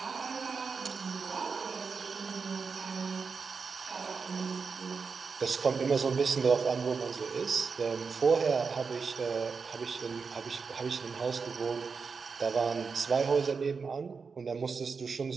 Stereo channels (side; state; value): left; quieter; 5.2 dB